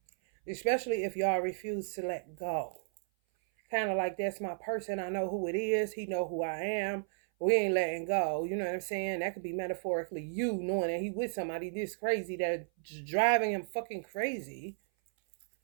Especially if y'all refuse to let go. Kind of like, that's my person. I know who it is. He know who I am. We ain't letting go. You know what I'm saying? That could be metaphorically you knowing that he with somebody this crazy that's driving him fucking crazy.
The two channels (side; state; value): left; silent; 55 dB below the other